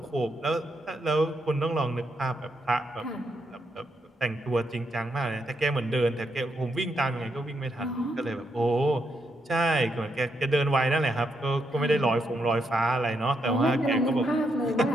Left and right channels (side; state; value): both; normal; correlation 0.80